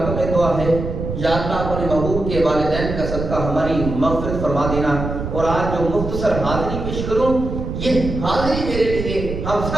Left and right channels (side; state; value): right; noise; rumble, 5 dB below the sound